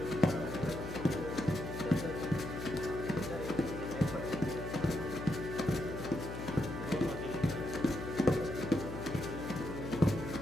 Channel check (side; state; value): left; noise; hum, 7 dB below the sound